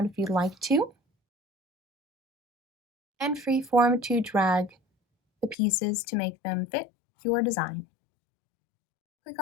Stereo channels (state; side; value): drops out; right; at 5.6 s